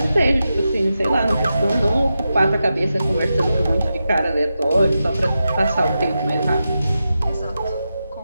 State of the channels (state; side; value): inverted; both; correlation -0.90